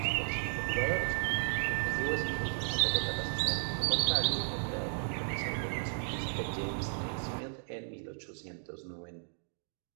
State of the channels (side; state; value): left; silent; digital silence